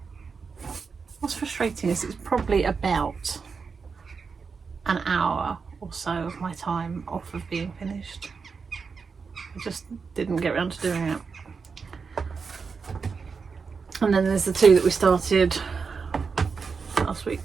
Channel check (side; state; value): left; quieter; 5.3 dB